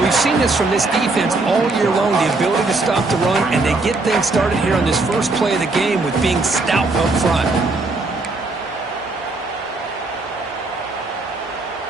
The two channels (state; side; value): quieter; left; 3.3 dB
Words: we've seen this from this defense all year long, the ability to stop the run, and they get things started here on this first play of the game with being stout up front.